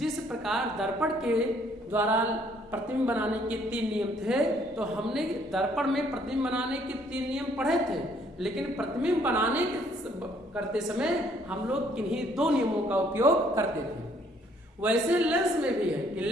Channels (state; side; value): normal; both; correlation 0.64